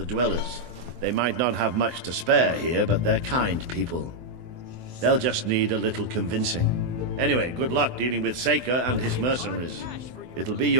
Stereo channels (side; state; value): left; late; 24 ms